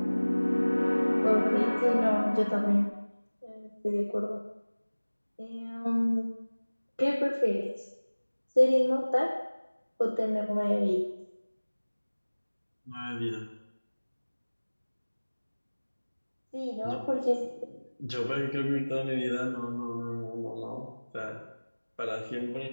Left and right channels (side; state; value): both; inverted; correlation -1.00